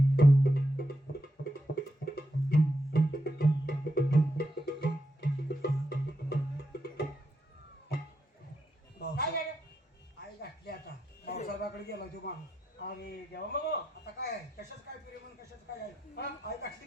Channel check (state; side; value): normal; both; correlation 0.83